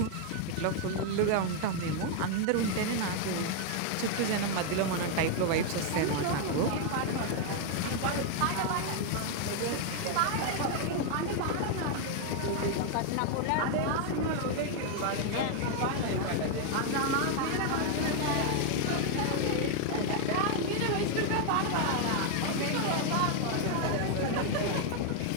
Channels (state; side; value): different; both; correlation 0.00